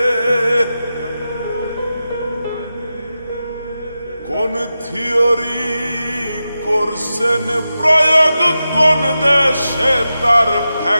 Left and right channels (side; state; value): both; inverted; correlation -0.91